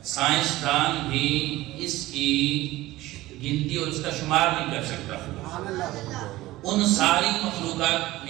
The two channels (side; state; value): left; quieter; 17.5 dB